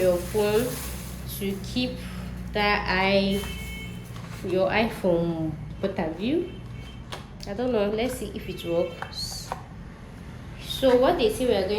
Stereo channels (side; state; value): both; identical; correlation 1.00